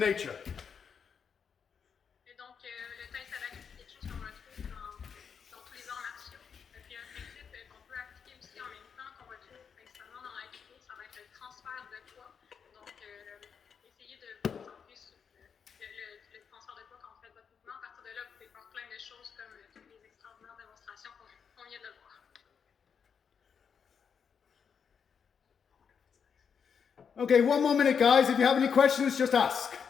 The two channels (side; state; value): right; quieter; 6.7 dB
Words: Et donc, le tai sabaki, c'est quelque chose qu'on retrouve dans tous les arts martiaux. Puis un principe qu'on peut appliquer aussi en même temps, qu'on retrouve principalement dans l'aïkido, ça va être le transfert de poids. Donc, essayez de vous concentrer sur le transfert de poids quand vous faites votre mouvement. À partir de là, vous pouvez faire plein de choses comme toutes les extraordinaires démonstrations qu'on vient de voir. Okay, one more minute, guys. If you have any questions, just ask.